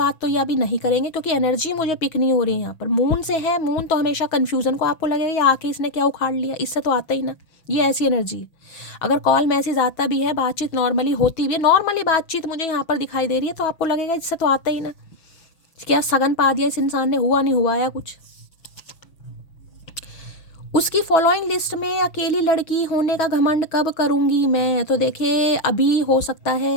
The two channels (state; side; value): late; right; 6.1 ms